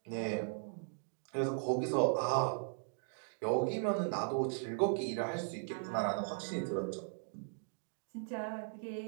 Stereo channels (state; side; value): silent; left; digital silence